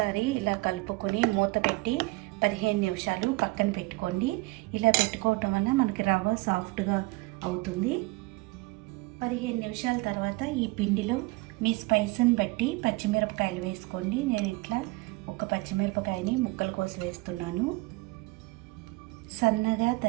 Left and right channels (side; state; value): left; quieter; 23.0 dB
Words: ఇలా కలుపుకొని మూత పెట్టి 15 నిమిషాలు పక్కన పెట్టుకోండి. ఇలా పెట్టుకోవటం వల్ల మనకి రవ్వ సాఫ్ట్గా అవుతుంది. 15 నిమిషాల తర్వాత ఈ పిండిలో మీ స్పైస్ని బట్టి పచ్చిమిరపకాయలు వేసుకోండి. నేను ఇట్లా 1 పచ్చిమిరపకాయని ముక్కలు కోసి వేస్తున్నాను. సన్నగా